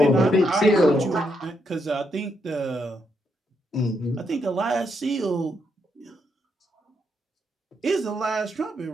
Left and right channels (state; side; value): normal; both; correlation 0.78